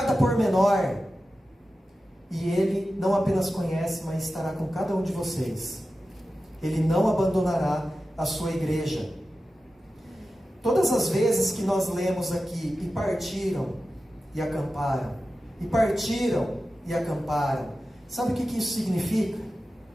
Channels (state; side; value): normal; both; correlation 0.93